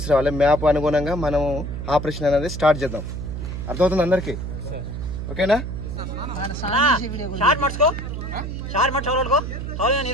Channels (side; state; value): right; noise; hum, 6 dB below the sound